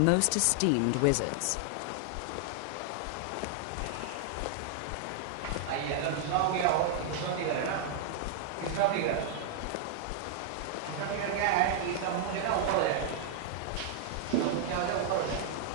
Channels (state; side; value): different; both; correlation -0.01